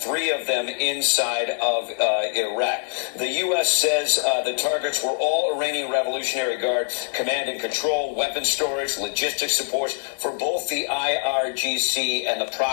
3 of them inside of Iraq. The U.S. says the targets were all Iranian Revolutionary Guard command and control, weapons storage, logistics support for both the IRGC and the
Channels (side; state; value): right; silent; digital silence